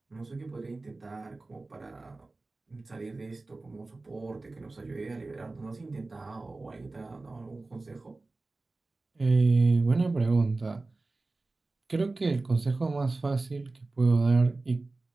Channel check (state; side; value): quieter; left; 3.3 dB